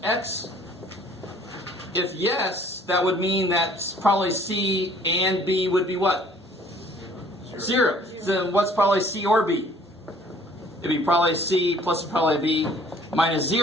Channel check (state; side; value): normal; both; correlation 0.56